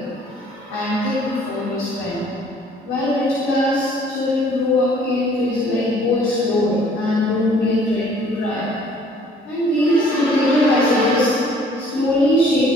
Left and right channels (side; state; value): both; normal; correlation 0.57